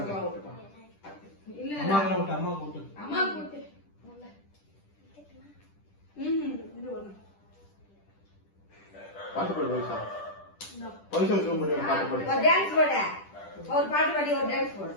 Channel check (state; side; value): late; right; 10 ms